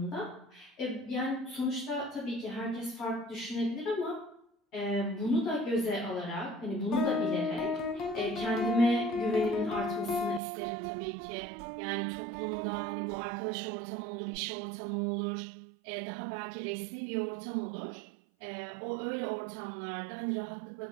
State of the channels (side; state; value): left; drops out; at 10.4 s